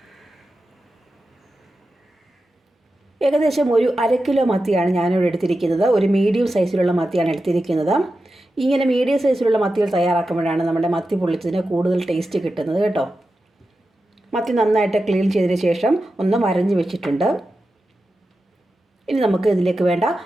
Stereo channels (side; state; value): both; normal; correlation 0.91